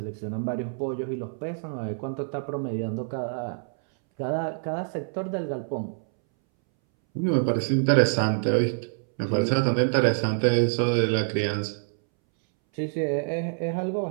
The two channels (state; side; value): silent; left; 61 dB below the other